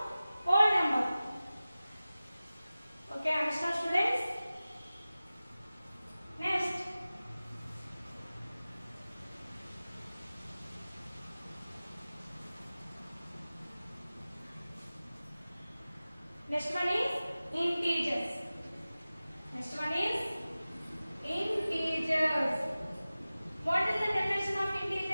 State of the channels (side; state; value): both; inverted; correlation -0.97